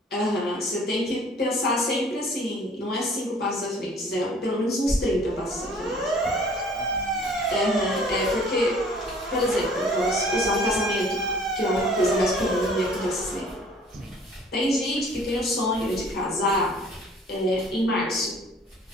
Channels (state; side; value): normal; both; correlation 0.53